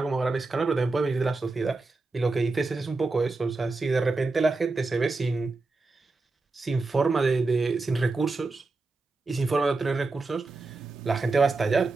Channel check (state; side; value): quieter; left; 3.6 dB